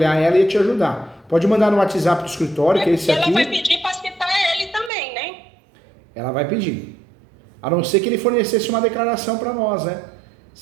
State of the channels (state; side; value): drops out; left; at 4.9 s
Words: ela e te ajudar. Pode mandar no WhatsApp do escritório, que é esse aqui. Ela vai pedir para citar ele também, né? Ela vai pedir. A não ser que ele fornecesse uma declaração para nós, né?